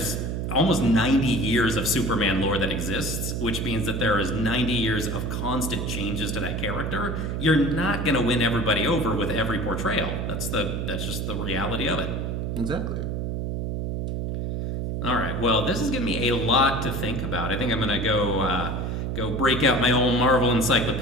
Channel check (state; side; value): noise; right; hum, 2 dB below the sound